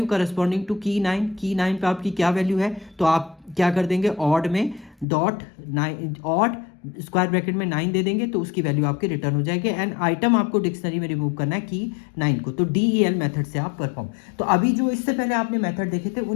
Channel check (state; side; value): drops out; right; at 5.1 s